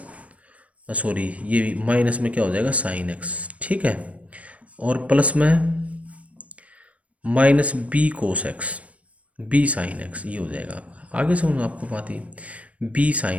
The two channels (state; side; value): late; left; 0.065 ms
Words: सॉरी ये माइनस में क्या हो जाएगा साइन एक्स, ठीक है, और प्लस में minus b cos x b sine x, ये हो जाएगा आपका। आगे समझो आपको बात ही, बी